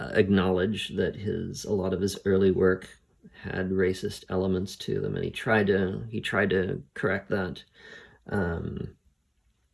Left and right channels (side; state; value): both; identical; correlation 1.00